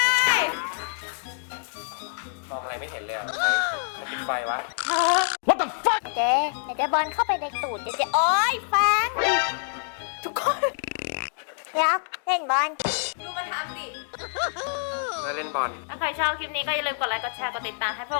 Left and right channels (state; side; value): silent; right; digital silence